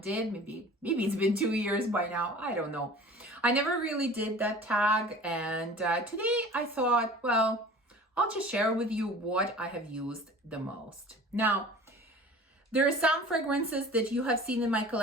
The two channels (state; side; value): normal; both; correlation 0.43